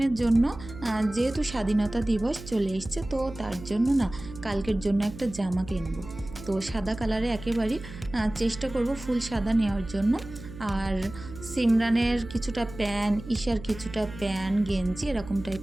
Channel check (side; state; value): right; noise; hum, 14 dB below the sound